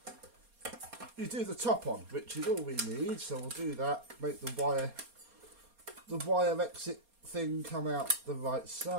you do the top on, which is all we need. So we'll do that. Make the wire exit thing come out the right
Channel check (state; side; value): late; left; 4.2 ms